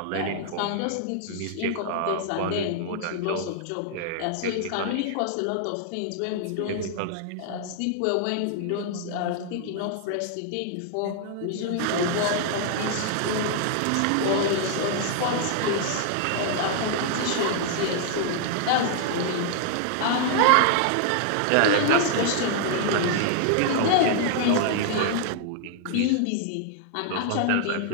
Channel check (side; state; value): both; different; correlation -0.01